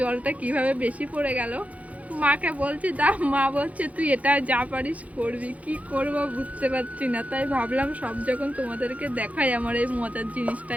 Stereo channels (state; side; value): late; left; 0.069 ms